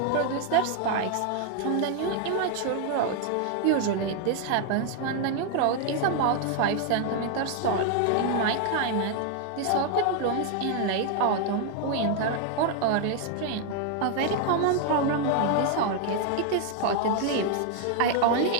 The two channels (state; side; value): different; both; correlation 0.00